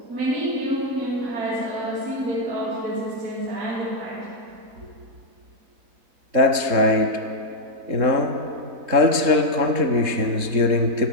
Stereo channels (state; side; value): late; left; 3.7 ms